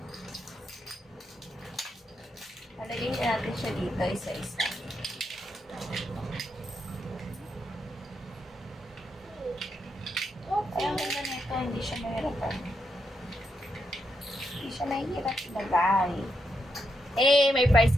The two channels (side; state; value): both; normal; correlation 0.82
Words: Halagay natin siya dito isa-isa. Kaya ang ganda nito, hindi siya mahirapan. Hindi siya mahirap ilagay. Eh, may prize